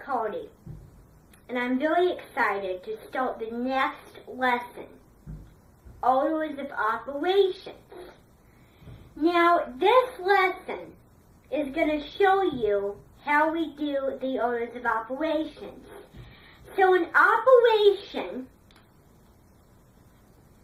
Cody, and I'm very excited to start the next lesson, Orders of Operations. Now, this lesson is going to show you how we do the orders of operations. So an operation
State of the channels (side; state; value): both; identical; correlation 1.00